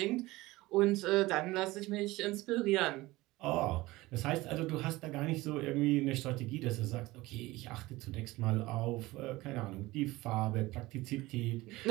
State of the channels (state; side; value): quieter; left; 19.6 dB